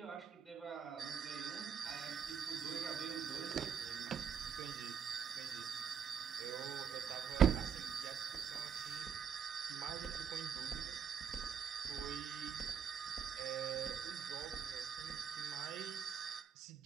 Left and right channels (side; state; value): left; quieter; 7.7 dB